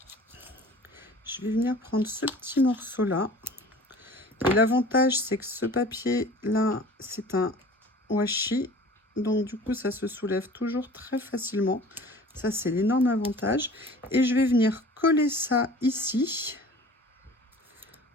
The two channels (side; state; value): both; normal; correlation 0.44